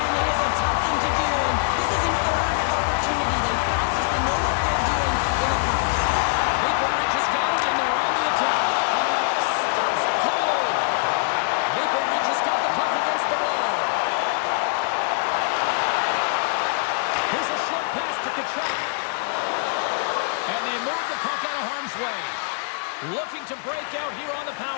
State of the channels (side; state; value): right; silent; digital silence